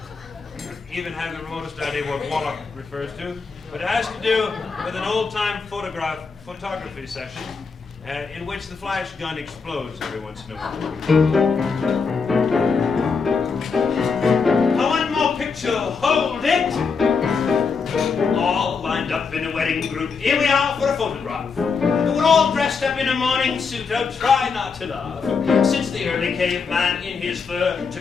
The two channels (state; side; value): quieter; right; 5.2 dB